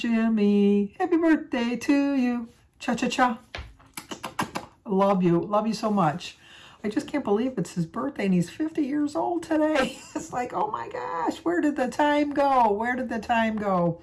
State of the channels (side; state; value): both; identical; correlation 1.00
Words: Happy birthday to you. Cha-cha-cha. Love you. Love you so much. I just can't believe it's his birthday and he's 50 years old today. It's like, oh my gosh, where did the time go? Where did the time go?